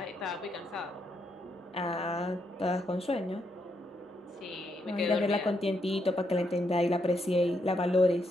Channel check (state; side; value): normal; both; correlation 0.78